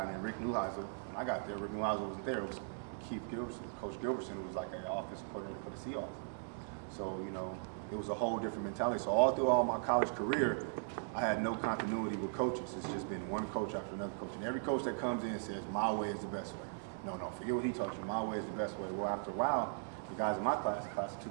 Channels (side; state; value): left; silent; digital silence